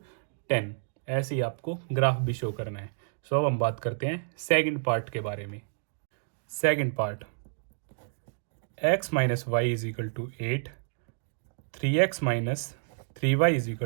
10। ऐसे ही आपको ग्राफ भी शो करना है। सो अब हम बात करते हैं सेकंड पार्ट के बारे में। Second part, x - y = 8, 3x - 3y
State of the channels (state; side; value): silent; left; digital silence